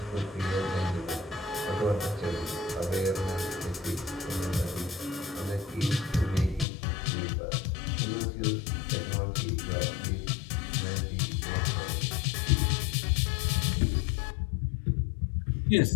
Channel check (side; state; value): right; drops out; at 6.7 s